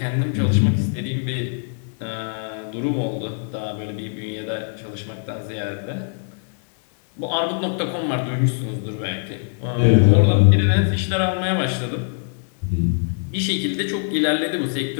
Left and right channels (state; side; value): silent; right; 59 dB below the other